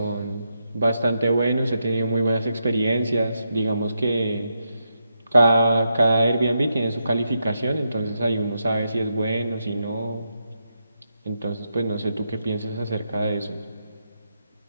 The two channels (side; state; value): both; inverted; correlation -0.83